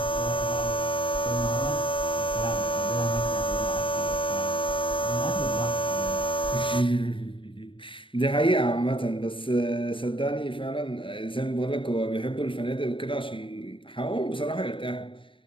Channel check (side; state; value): right; late; 0.25 ms